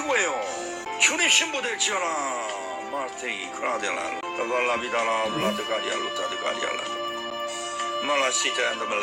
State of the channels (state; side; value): identical; both; correlation 1.00